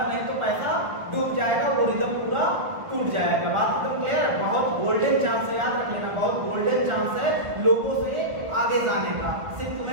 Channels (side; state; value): left; late; 1.7 ms